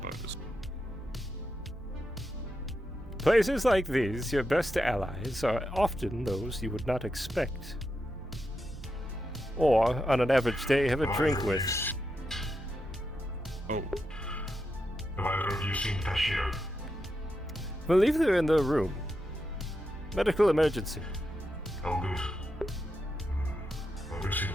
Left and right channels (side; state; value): both; normal; correlation 0.86